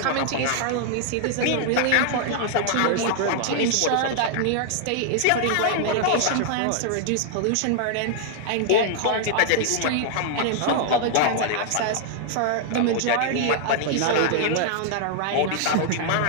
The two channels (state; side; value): different; both; correlation -0.01